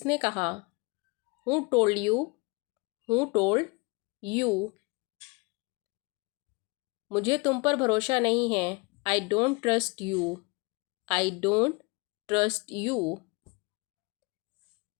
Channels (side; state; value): right; quieter; 28.3 dB